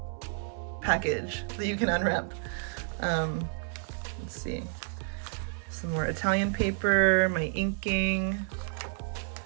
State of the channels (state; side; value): silent; left; 58 dB below the other